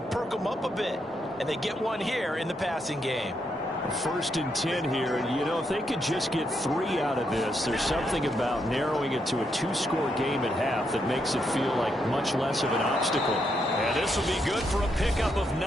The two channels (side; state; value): both; normal; correlation 0.79